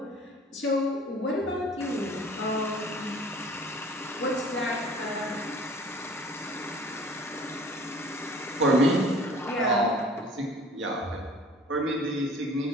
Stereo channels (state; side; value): normal; both; correlation 0.49